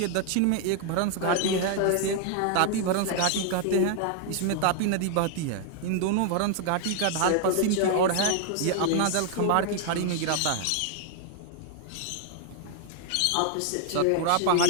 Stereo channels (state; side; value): different; both; correlation 0.00